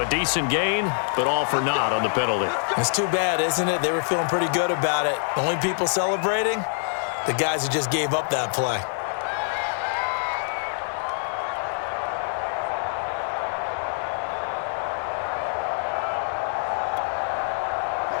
a decent gain, but all for naught on the penalty. It's too bad, isn't it? They were feeling pretty good about it. The only people celebrating, the guys who just gave up that play.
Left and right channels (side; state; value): right; silent; digital silence